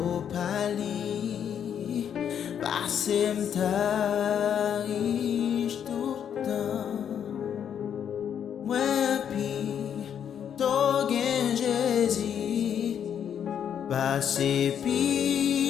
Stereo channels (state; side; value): quieter; right; 8.7 dB